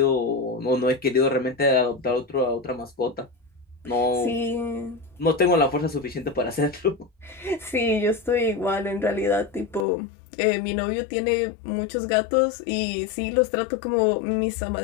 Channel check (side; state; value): right; drops out; at 9.9 s